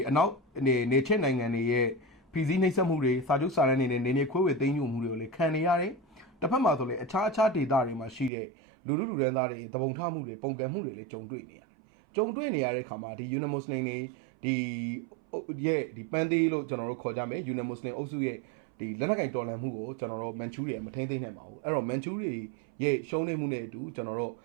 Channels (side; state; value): left; drops out; at 8.3 s